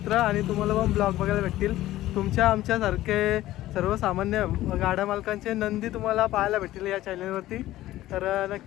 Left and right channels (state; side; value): quieter; right; 15.2 dB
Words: आणि तुम्हाला पण ब्लॉग बघायला भेटतील. तुमच्या आमच्यासारखे सर्वसामान्य गाड्या मालकांचे नंदी तुम्हाला पाहायला भेटतील या चॅनलवरती, तर